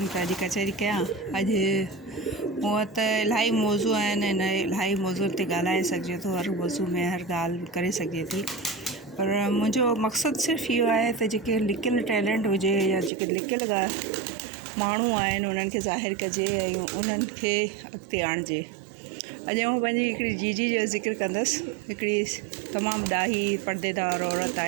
पिया अॼु कचहरी कयां। अॼु मूं वटि त इलाही मौज़ू आहिनि, हिन इलाही मौज़ू ते ॻाल्हाए सघिजे थो, हर मौज़ू में हर ॻाल्हि करे सघिजे थी। पर मुंहिंजो मक़सदु सिर्फ़ु इहो आहे त जेके लिकियलु टैलेंट हुजे या जेके लिकियलु माण्हू आहिनि उन्हनि खे ज़ाहिर कजे ऐं उन्हनि खे अॻिते आणिजे। अॼु आउं पंहिंजी हिकिड़ी जीजी जो ज़िक्र कंदसि। हिकिड़ी तमामु ॾाही परदेदार औरत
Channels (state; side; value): drops out; left; at 13.1 s